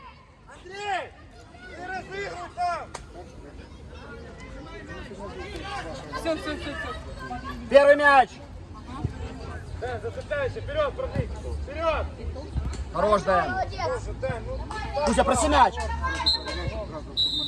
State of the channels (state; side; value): identical; both; correlation 1.00